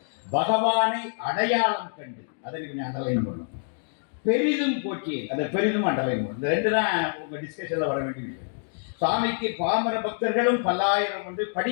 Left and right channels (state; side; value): silent; right; digital silence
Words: பகவானை அடையாளம் கண்டு அதை கொஞ்சம் அண்டர்லைன் பண்ணும். பெரிதும் போற்றி அதை பெரிதும் அண்டர்லைன் பண்ணும். இந்த ரெண்டு தான் உங்க டிஸ்கஷன்ல வர வேண்டிய விஷயம். சுவாமிக்கு பாமர பக்தர்களும் பல்லாயிரம் உண்டு,